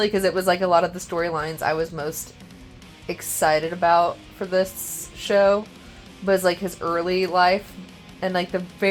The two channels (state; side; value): identical; both; correlation 1.00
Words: because it was like a lot of the storylines I was most excited about for this show was like his early life, and like the